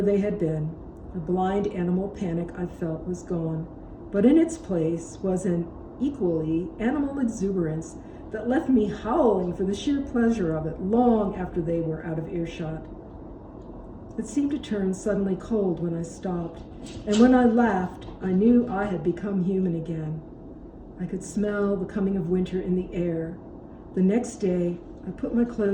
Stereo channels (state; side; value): identical; both; correlation 1.00